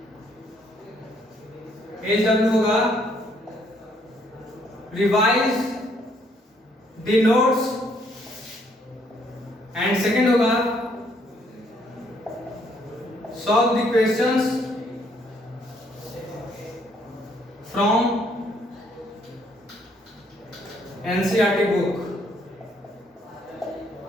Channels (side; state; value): both; normal; correlation 0.68